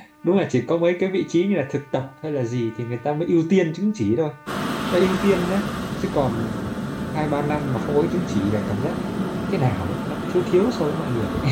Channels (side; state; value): both; identical; correlation 1.00